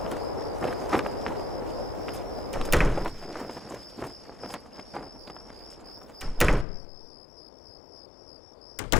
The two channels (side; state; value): right; drops out; at 6.7 s